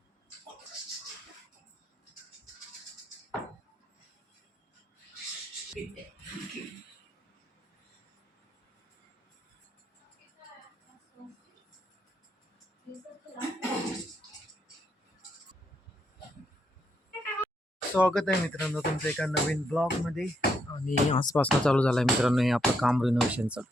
स्वागत आहे मित्रांनो तुमचं एका नवीन ब्लॉग मध्ये. आणि आजपासून चालू झालं आहे मित्रांनो हे आपलं काम रिनोव्हेशनचं,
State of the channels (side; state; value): both; normal; correlation 0.77